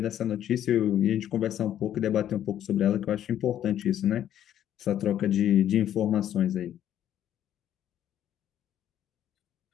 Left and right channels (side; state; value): right; quieter; 11.0 dB